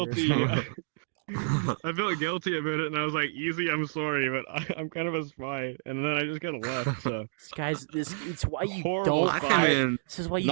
guilty. spying. I felt guilty about it, and I was like, "Easy, I'm sorry, but I'm kind of a spy." And then I just kind of left. So Guys, it's why you Horrible don't I spy. came hire. in This is why you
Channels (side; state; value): left; silent; digital silence